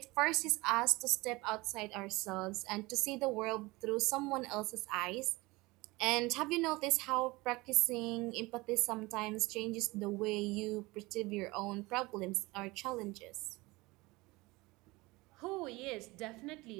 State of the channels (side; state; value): left; quieter; 22.5 dB